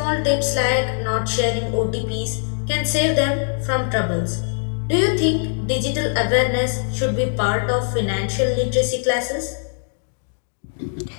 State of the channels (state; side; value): silent; right; digital silence